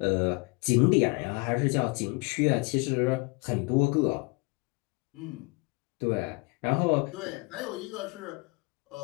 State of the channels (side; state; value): right; quieter; 28.9 dB